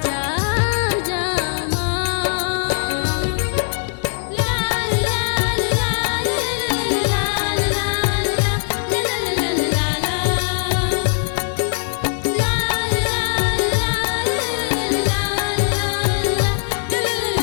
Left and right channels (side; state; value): right; silent; digital silence